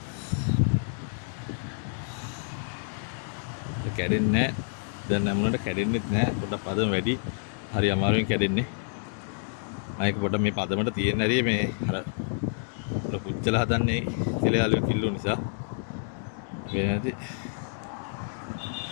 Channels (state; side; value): silent; right; digital silence